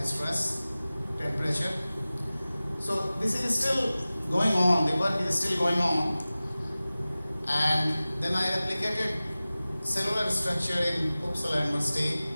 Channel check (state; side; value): inverted; both; correlation -0.97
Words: stress, temperature. So this is still going on. The work is still going on. And then I replicated cellular structure in Uppsala University